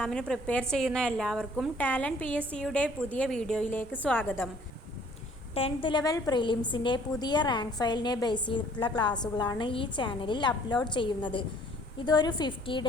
prepare ചെയ്യുന്ന എല്ലാവർക്കും ടാലൻറ്റ് PSCയുടെ പുതിയ വീഡിയോയിലേക്ക് സ്വാഗതം. 10th ലെവൽ പ്രിലിംസിൻ്റെ പുതിയ റാങ്ക് ഫയലിനെ ബേസ് ചെയ്തിട്ടുള്ള ക്ലാസ്സുകളാണ് ഈ ചാനലിൽ അപ്ലോഡ് ചെയ്യുന്നത്. ഇതൊരു 50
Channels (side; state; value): both; normal; correlation 0.57